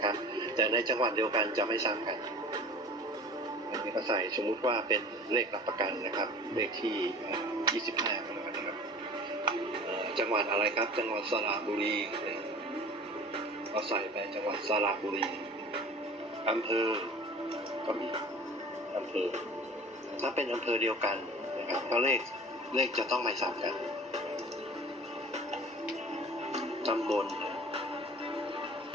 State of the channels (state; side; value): normal; both; correlation 0.42